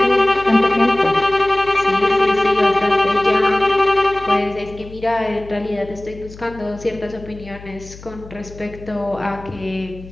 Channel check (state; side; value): noise; left; hum, 18 dB below the sound